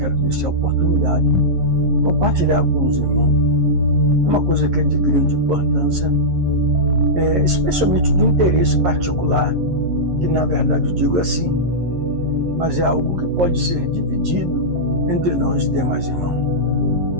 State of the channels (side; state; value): left; late; 11 ms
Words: nesta oportunidade, compartilhar com os irmãos uma coisa que é de grande importância, especialmente do interesse particular, que na verdade eu digo assim, mas é algo que pode ser dividido entre nós demais irmãos.